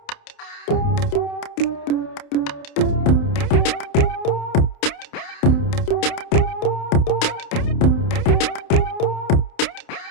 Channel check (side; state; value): right; late; 29 ms